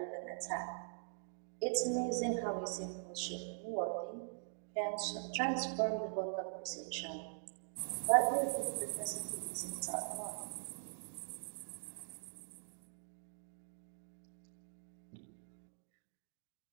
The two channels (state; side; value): silent; left; digital silence